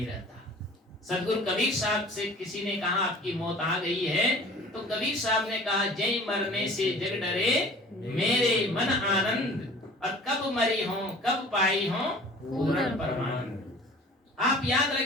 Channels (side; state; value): both; normal; correlation 0.45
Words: रहता। सदगुरु कबीर साहब से किसी ने कहा आपकी मौत आ गई है, तो कबीर साहब ने कहा जय मरने से जग डरे मेरे मन आनंद, और कब मरी हो कब पाई हो पूर्ण परमानंद। आप याद